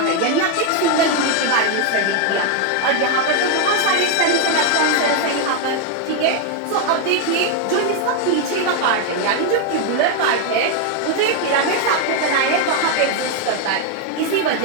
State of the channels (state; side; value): different; both; correlation 0.01